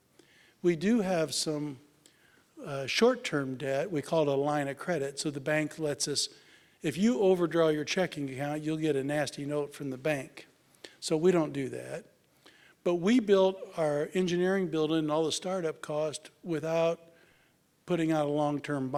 We do have some short-term debt. We call it a line of credit. So the bank lets us, if you overdraw your checking account, you'll get a nasty note from the bank. So we don't do that. But we built our engineering building and all the startup cost without putting out a long-term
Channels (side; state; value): both; identical; correlation 1.00